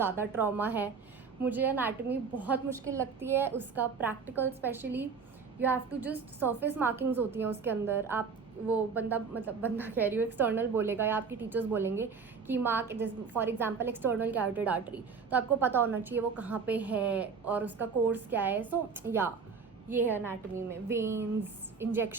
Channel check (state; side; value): quieter; left; 5.4 dB